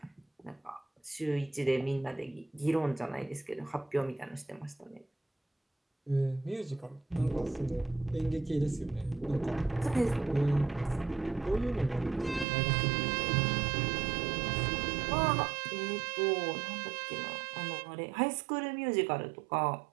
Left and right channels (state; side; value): drops out; left; at 12.5 s